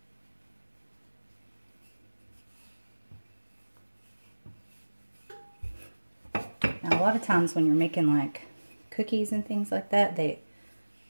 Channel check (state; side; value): inverted; both; correlation -1.00